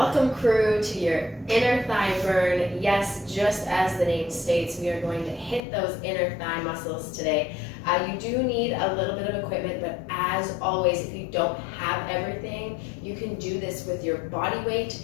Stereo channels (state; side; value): drops out; right; at 5.6 s